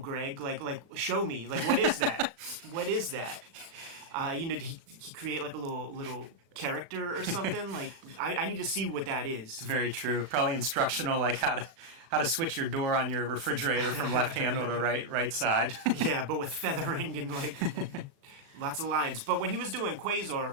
Show me. What is that? What is that? Did he create a little character or something? I need to see what that is. It's very true. Probably instructional, how to switch your door on your refrigerator from left handle to right side. Yeah, but with feathering and lots of lines. But when he was doing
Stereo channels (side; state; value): left; late; 36 ms